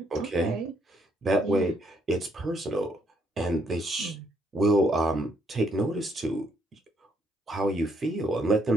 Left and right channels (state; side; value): normal; both; correlation 0.72